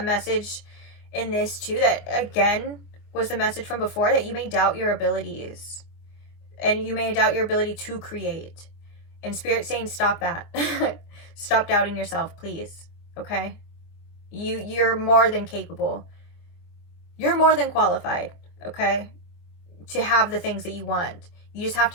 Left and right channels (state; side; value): late; right; 25 ms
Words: message in this too that, again, was the message from before, that you may doubt your abilities and you may doubt your ability to create. And Spirit's saying, stop that. Stop doubting yourself, please. Okay? You're more than capable. You're more than qualified, okay, to have the things that you want. You just have